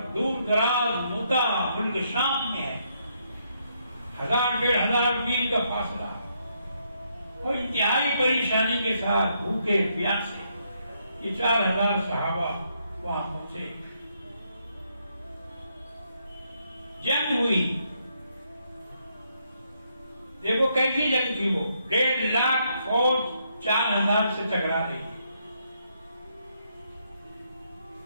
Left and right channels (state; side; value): inverted; both; correlation -0.76